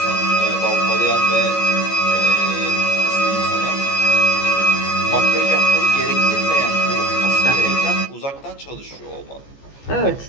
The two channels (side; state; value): right; late; 14 ms